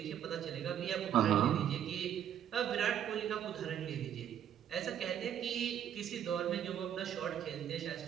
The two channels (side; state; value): left; quieter; 9.8 dB